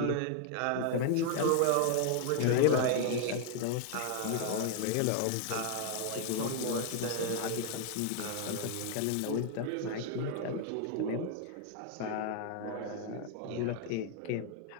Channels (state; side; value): different; both; correlation 0.00